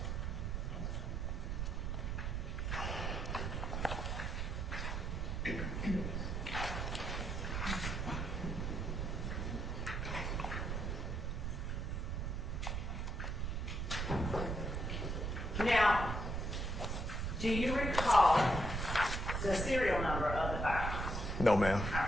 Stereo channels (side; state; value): right; noise; rumble, 1 dB below the sound